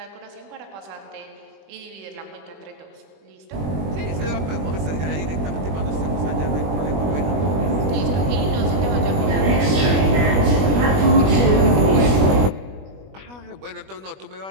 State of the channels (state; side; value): late; left; 21 ms